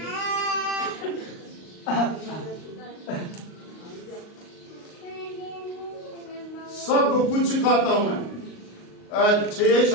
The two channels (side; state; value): right; late; 38 ms